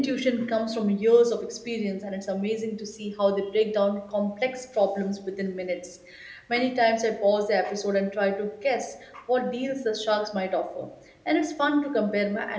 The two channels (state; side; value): identical; both; correlation 1.00